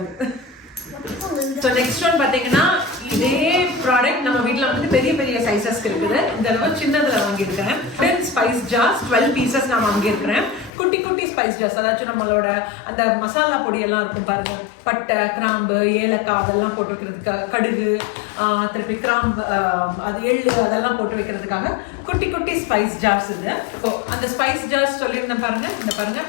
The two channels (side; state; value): right; drops out; at 10.7 s